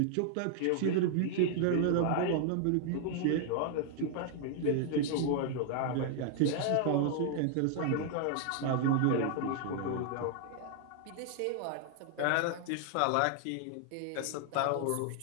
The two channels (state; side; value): different; both; correlation 0.00